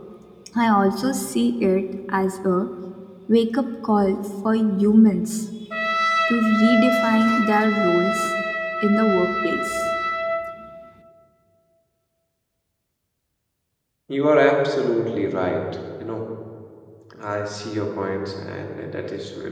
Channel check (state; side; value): identical; both; correlation 1.00